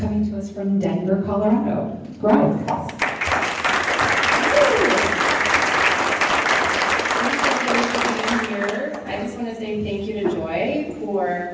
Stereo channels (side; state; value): both; identical; correlation 1.00